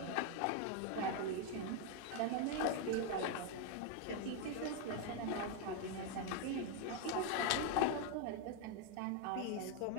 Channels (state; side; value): different; both; correlation 0.01